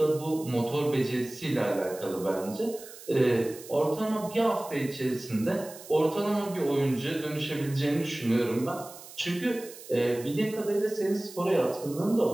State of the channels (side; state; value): right; noise; hiss, 17 dB below the sound